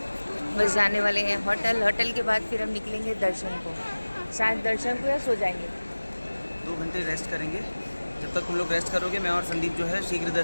बस जाने वाले हैं होटल। होटल के बाद फिर हम निकलेंगे दर्शन को। शायद दर्शन को या सो जाएंगे। 2 घंटे रेस्ट करेंगे। जब तक तुम लोग रेस्ट करोगे मैं और संदीप जो है शीघ्र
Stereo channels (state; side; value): inverted; both; correlation -1.00